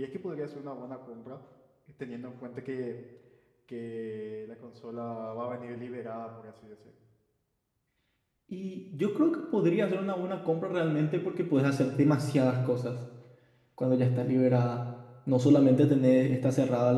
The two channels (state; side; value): identical; both; correlation 1.00